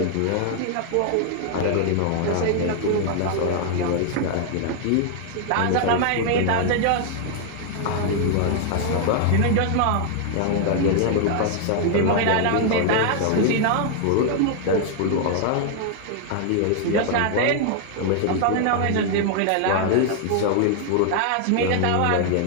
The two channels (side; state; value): both; different; correlation 0.00